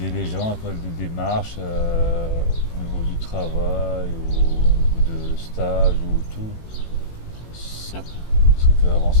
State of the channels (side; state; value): right; late; 18 ms